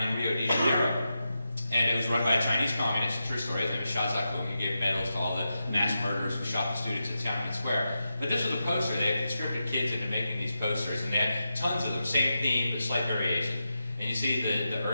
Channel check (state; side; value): inverted; both; correlation -0.89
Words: in Rio de Janeiro. And it was run by a Chinese communist, true story. His name is Xia Zhakun. He gave medals to all the mass murderers who shot the students at Tiananmen Square. But this was a poster. They had conscripted kids into making these posters, and they had tons of them, same theme, but slight variation. And you see the